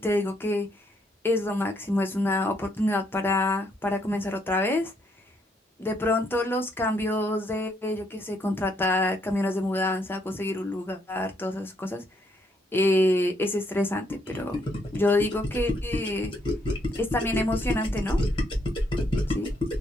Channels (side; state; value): both; normal; correlation 0.73